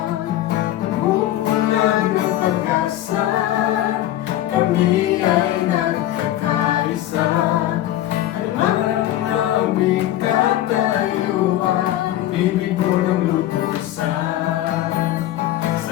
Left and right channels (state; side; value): quieter; right; 13.6 dB